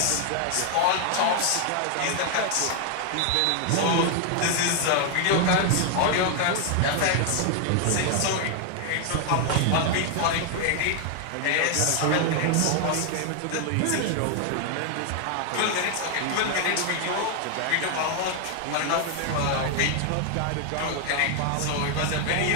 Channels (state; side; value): different; both; correlation 0.00